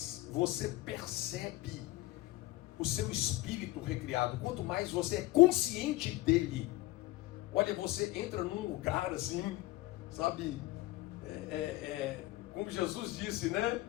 você percebe o seu espírito recriado, quanto mais você é consciente dele, olha, você entra num lugar assim, sabe, como Jesus disse, né?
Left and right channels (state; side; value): quieter; right; 18.5 dB